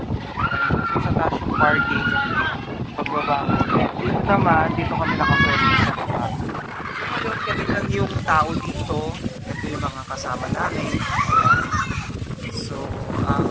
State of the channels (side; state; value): both; identical; correlation 1.00